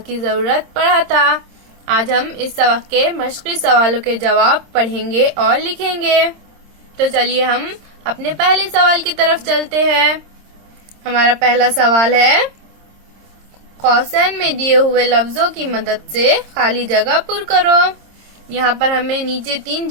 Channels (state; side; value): late; left; 26 ms